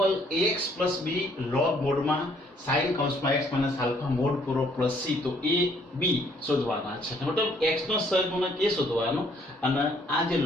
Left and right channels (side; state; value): both; normal; correlation 0.64